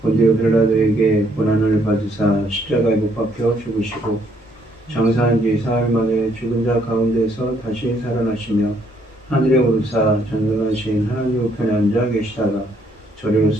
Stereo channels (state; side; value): normal; both; correlation 0.68